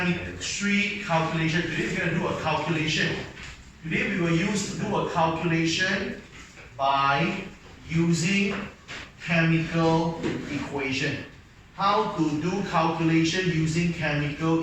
calculation. Today we're going to do a calculation. Today we will do a calculation by using chemical equation. How to do calculation using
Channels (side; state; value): both; identical; correlation 1.00